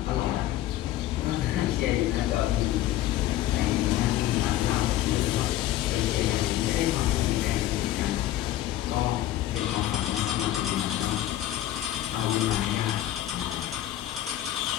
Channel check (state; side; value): quieter; right; 13.6 dB